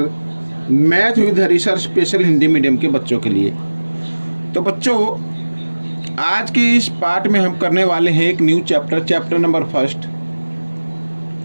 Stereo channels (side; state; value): both; inverted; correlation -1.00